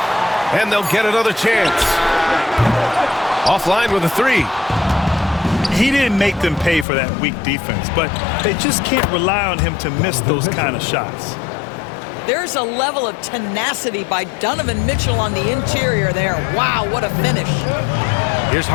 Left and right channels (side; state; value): right; drops out; at 6.9 s